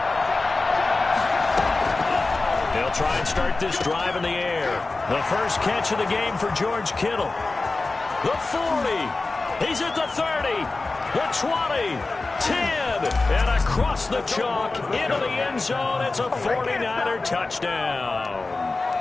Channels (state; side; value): quieter; right; 3.5 dB